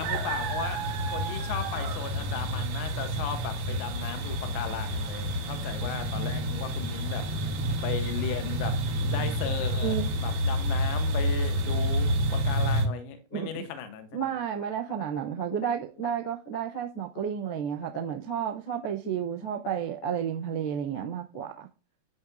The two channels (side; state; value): right; late; 14 ms